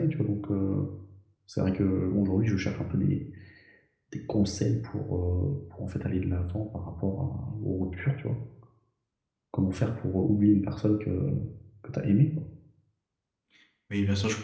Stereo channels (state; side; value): identical; both; correlation 1.00